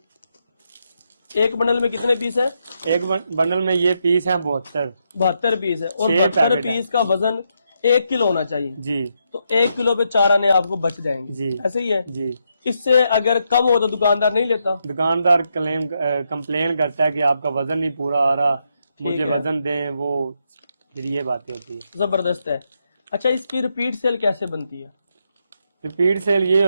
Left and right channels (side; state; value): both; inverted; correlation -0.80